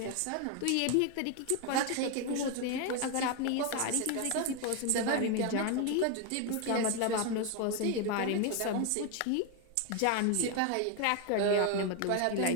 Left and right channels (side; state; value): both; different; correlation 0.01